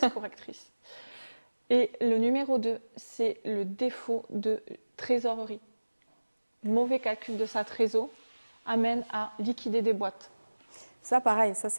correctrice. Et le numéro 2, c'est le défaut de trésorerie. Mauvais calcul de sa trésor amène à liquider des boîtes. Ça, pareil, ça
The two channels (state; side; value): inverted; both; correlation -1.00